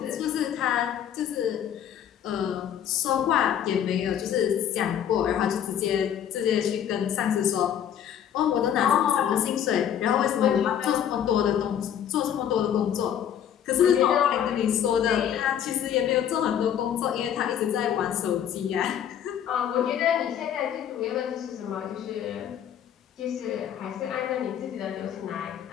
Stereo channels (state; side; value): quieter; right; 9.5 dB